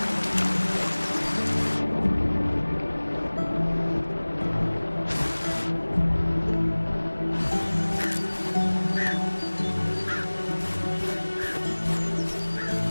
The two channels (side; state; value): both; inverted; correlation -1.00